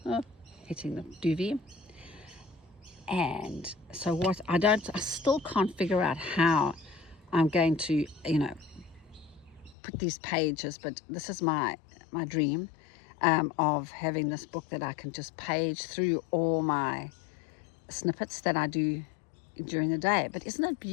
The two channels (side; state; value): right; drops out; at 9.8 s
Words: Oh, hitting the duvet. And so I still can't figure out how I'm going to, put these pages, but this is my dream. Of having this book that I can just page through all my snippets that I do during the day. But isn't it